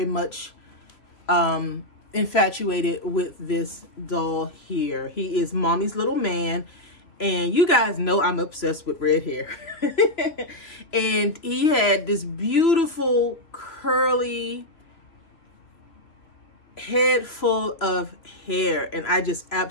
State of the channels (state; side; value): late; right; 3.0 ms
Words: much infatuated with this doll here. He is mommy's little man, and you guys know I'm obsessed with red hair. And he had this beautiful curly head full of hair, and I just